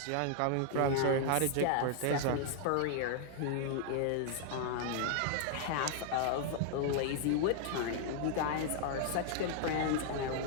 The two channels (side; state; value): both; different; correlation 0.00